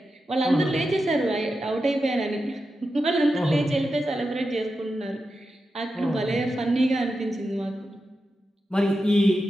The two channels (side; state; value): both; normal; correlation 0.89